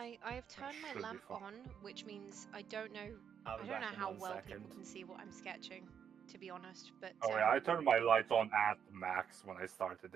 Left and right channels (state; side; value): quieter; left; 8.0 dB